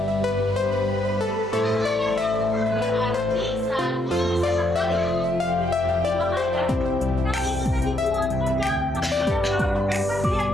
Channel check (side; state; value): both; normal; correlation 0.75